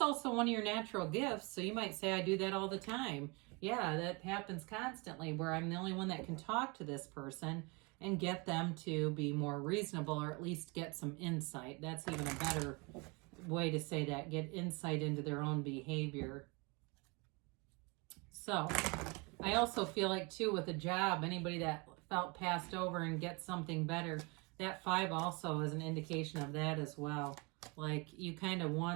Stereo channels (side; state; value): left; quieter; 28.9 dB